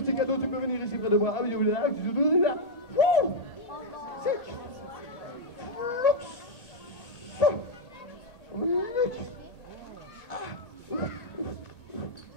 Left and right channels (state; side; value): late; right; 1.8 ms